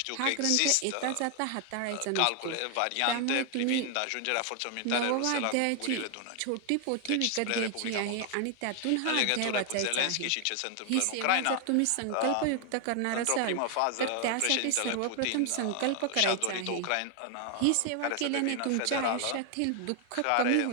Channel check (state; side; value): different; both; correlation 0.00